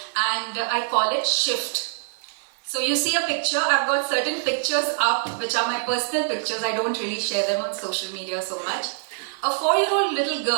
and I call it Shift. So you see a picture, I've got certain pictures up which are my personal pictures. I don't really share them on social media so much. A 4-year-old little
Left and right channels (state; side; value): silent; left; 56 dB below the other